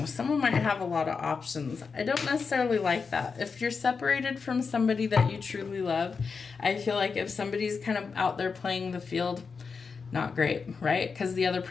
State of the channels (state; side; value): quieter; right; 5.2 dB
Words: someone might have a lot of options. I don't necessarily like that. If you're separated from somebody that you truly love, I feel like if somebody's kind of out there playing the field, not great, right? Because the other